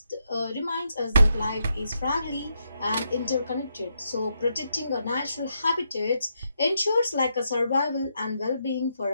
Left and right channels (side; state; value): both; inverted; correlation -0.80